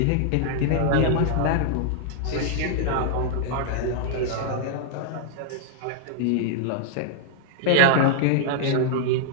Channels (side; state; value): both; different; correlation -0.01